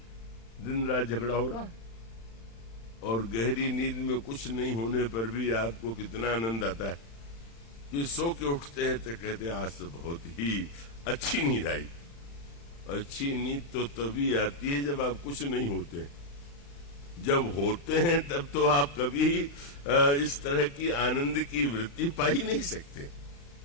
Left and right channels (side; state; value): right; late; 35 ms